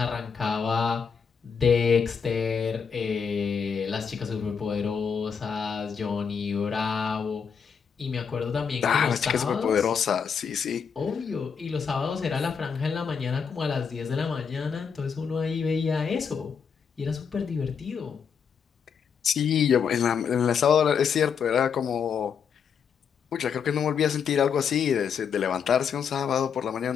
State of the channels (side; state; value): right; quieter; 6.6 dB